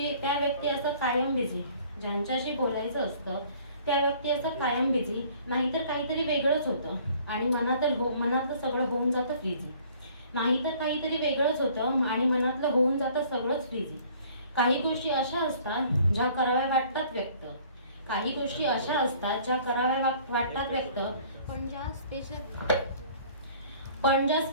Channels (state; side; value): inverted; both; correlation -0.55